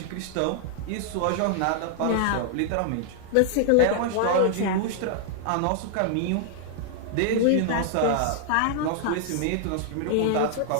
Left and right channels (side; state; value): both; different; correlation -0.01